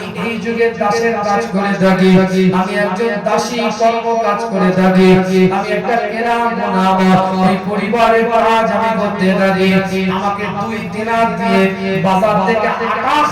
এই যুগে দাসের কাজ করে থাকি, আমি একজন দাসী কর্ম কাজ করে থাকি, আমি একটা কেরাম নাম এই পরিবারের কাজ আমি করতে থাকি। আমাকে 2 দিনার দিয়ে বাজার থেকে আটা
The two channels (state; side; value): identical; both; correlation 1.00